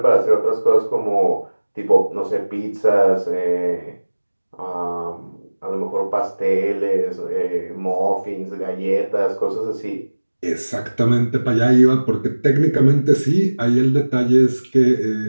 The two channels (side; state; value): both; inverted; correlation -1.00